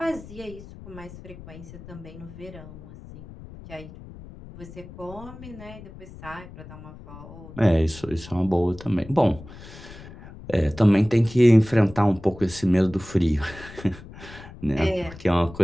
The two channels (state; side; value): noise; left; rumble, 16 dB below the sound